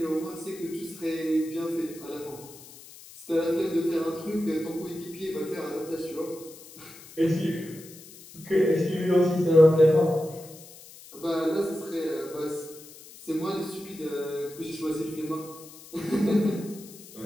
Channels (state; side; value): noise; left; hiss, 19 dB below the sound